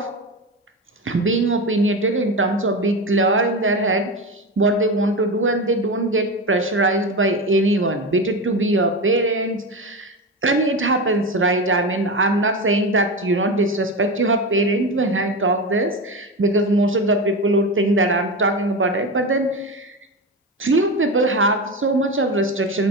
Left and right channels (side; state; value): both; normal; correlation 0.21